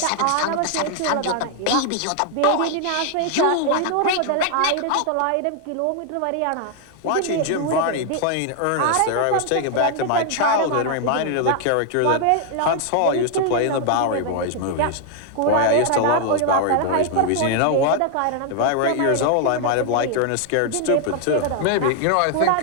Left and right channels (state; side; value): different; both; correlation 0.00